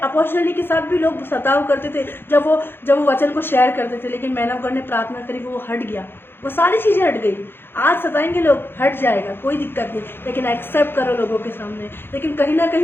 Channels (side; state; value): right; late; 0.10 ms